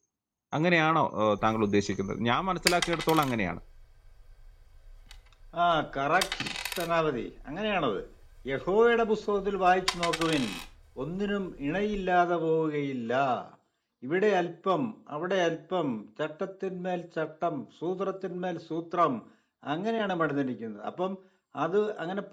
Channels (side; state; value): both; identical; correlation 1.00